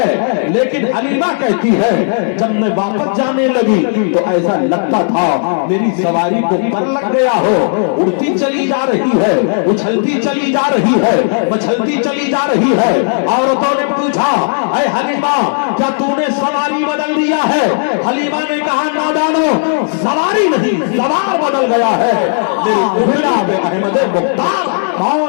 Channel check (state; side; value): silent; right; digital silence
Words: لیکن حلیمہ کہتی ہے جب میں واپس جانے لگی تو ایسا لگتا تھا میری سواری کو پر لگ گیا ہو, اڑتی چلی جا رہی ہے, اچھلتی چلی جا رہی ہے, مچھلتی چلی جا رہی ہے. عورتوں نے پوچھا اے حلیمہ کیا تو نے سواری بدل دیا ہے؟ حلیمہ نے کہا نادانو, سواری نہیں سوار بدل گیا ہے. احمد مختار.